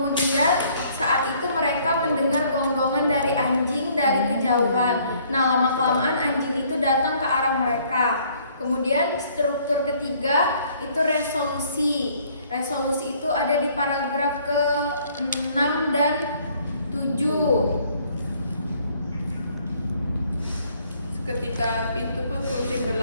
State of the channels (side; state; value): both; inverted; correlation -0.62